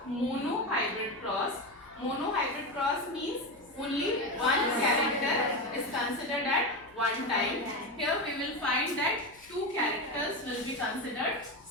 monohybrid cross. Monohybrid cross means only one character is considered at one time. Here we will find that two characters will be considered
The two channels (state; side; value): noise; left; hum, 29 dB below the sound